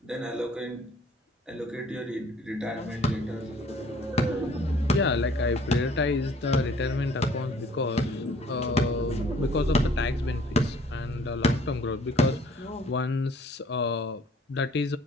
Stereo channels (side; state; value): both; normal; correlation 0.56